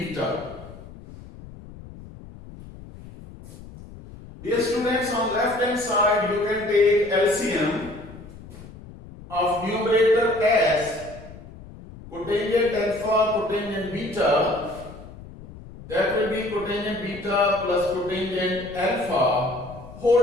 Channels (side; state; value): left; noise; rumble, 17 dB below the sound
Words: Dear students, on left hand side you can take LCM of numerator as cotangent alpha cotangent beta, that will be cotangent beta plus cotangent alpha